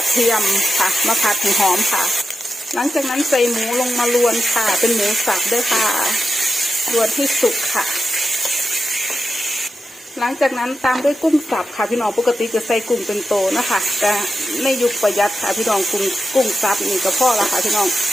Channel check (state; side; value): normal; both; correlation 0.90